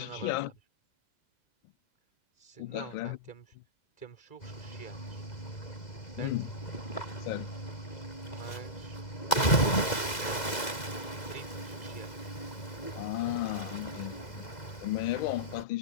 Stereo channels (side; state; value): right; late; 2.0 ms